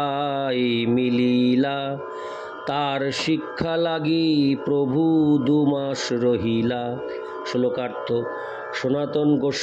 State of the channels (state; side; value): identical; both; correlation 1.00